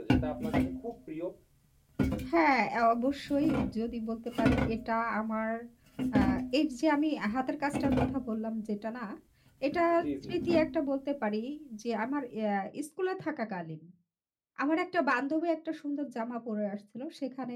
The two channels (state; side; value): identical; both; correlation 1.00